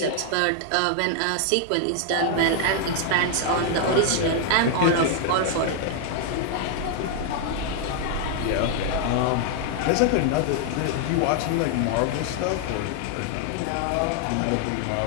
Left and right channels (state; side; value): different; both; correlation 0.00